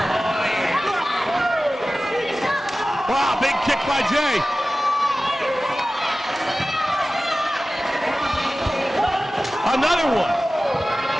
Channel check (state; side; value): normal; both; correlation 0.96